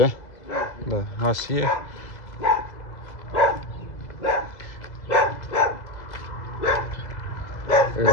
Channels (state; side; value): late; right; 2.0 ms